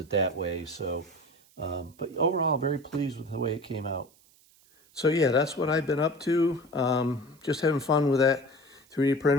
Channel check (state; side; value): noise; right; hiss, 30 dB below the sound